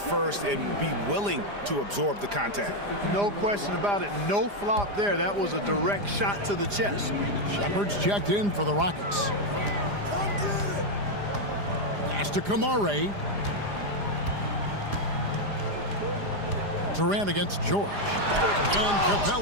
and be willing to absorb the contact. No question about it. No flop there. That was a direct shot to the chest. Shepard's checked in for the Rockets. Pass to Kamare. Durant against George. And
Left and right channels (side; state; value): left; late; 4.9 ms